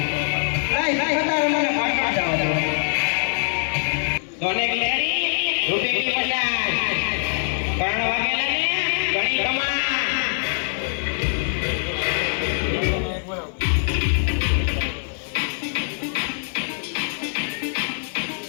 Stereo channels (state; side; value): silent; right; digital silence